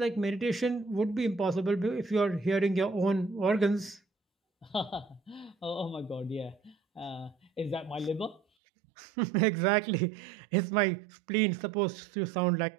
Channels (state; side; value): drops out; left; at 8.4 s